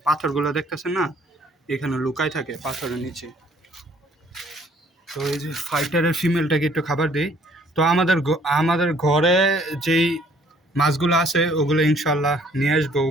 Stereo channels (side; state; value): both; normal; correlation 0.60